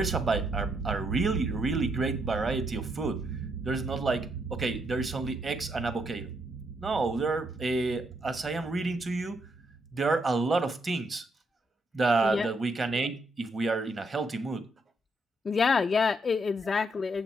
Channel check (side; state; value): both; normal; correlation 0.76